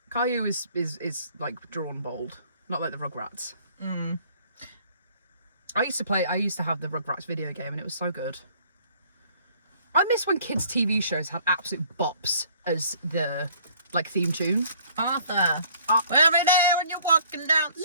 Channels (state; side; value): inverted; both; correlation -0.57